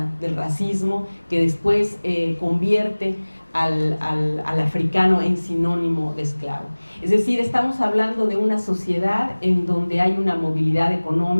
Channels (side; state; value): both; inverted; correlation -1.00